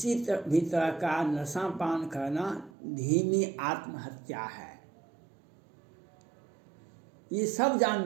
भी तरह का नशा पान करना धीमी आत्महत्या है, ये सब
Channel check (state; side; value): drops out; left; at 2.7 s